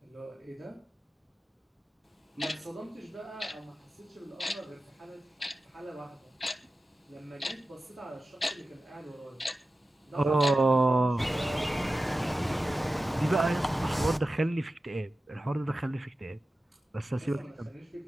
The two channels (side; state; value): both; normal; correlation 0.94